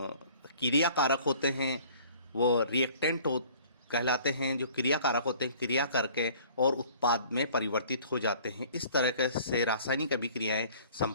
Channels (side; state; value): both; inverted; correlation -0.52